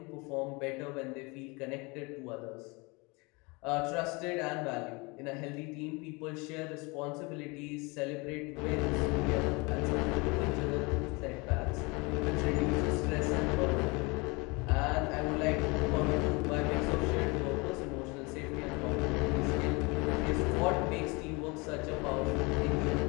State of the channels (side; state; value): right; quieter; 27.4 dB